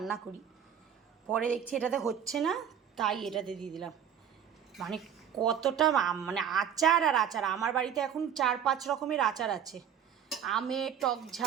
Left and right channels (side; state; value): left; quieter; 8.7 dB